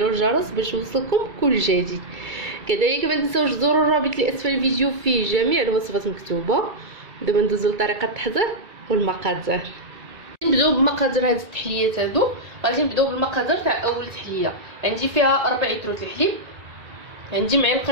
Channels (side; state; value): left; late; 2.3 ms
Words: الجرس باش يوصلكم كل جديد. كذلك ما تنساوش تزوروا الرابط اللي اسفل الفيديو فيه جميع الوصفات مكتوبه. دابا ندوزو لطريقه التحضير والمقادير. نبداو بمقادير هاد التحليات هادو. غادي نبداو بالمقادير تاع اول تحليه. عندي فيها 4 لتر الحليب، عندي معلقه